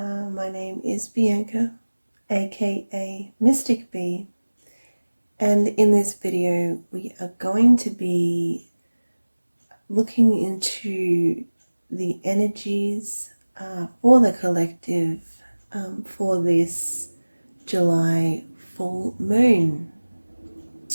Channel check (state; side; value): inverted; both; correlation -1.00